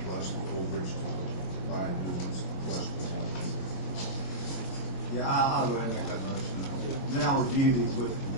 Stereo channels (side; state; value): right; late; 23 ms